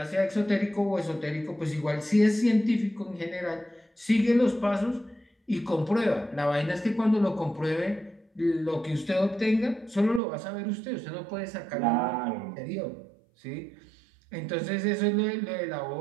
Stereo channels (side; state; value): left; drops out; at 10.2 s